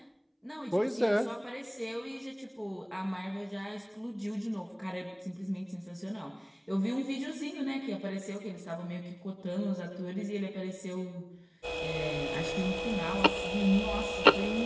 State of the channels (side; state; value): both; identical; correlation 1.00